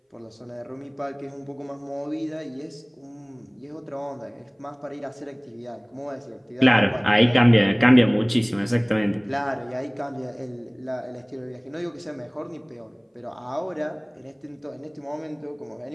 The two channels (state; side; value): identical; both; correlation 1.00